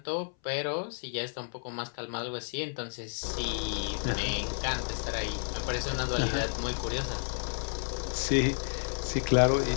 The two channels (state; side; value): silent; right; 57 dB below the other